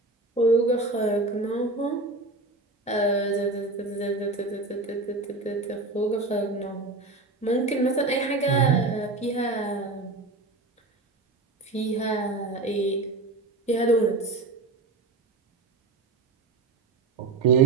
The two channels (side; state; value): left; quieter; 3.3 dB